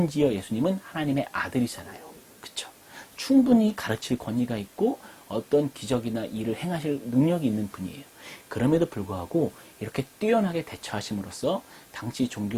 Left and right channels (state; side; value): identical; both; correlation 1.00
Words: 예수님은 하나님의 아들이잖아요. 그렇죠? 충분히 가르칠 권위가 있고 어떤 기적이나 일을 행하실 능력이 있는 분이에요. 그럼에도 불구하고 이렇게 뛰어나게 대처하심으로써 당시